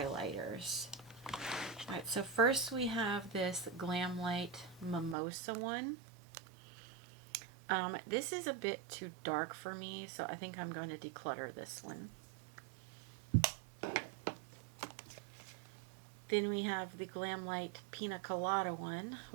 Alright, so first we have this Glam Light Mimosa one. This is a bit too dark for me, so I think I'm going to declutter this one. Then we have the Glam Light Pina Colada one,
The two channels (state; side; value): drops out; left; at 5.2 s